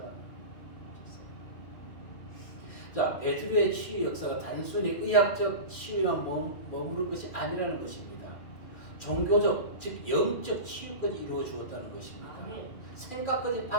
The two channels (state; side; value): late; right; 2.4 ms